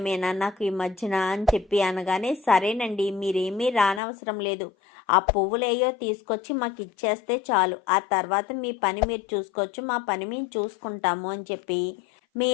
మీనా నాకు ఈ మధ్యన అని చెప్పి అనగానే, సరేనండి మీరేమీ రానవసరం లేదు, ఆ పువ్వులేయో తీసుకొచ్చి మాకు ఇచ్చేస్తే చాలు, ఆ తర్వాత మీ పని మీరు చూసుకోవచ్చు, మా పని మేము చూసుకుంటాము అని చెప్పి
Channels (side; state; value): right; drops out; at 4.0 s